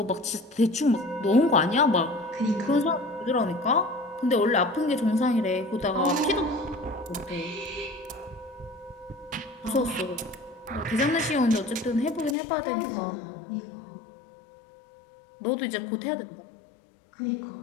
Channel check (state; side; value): drops out; right; at 12.4 s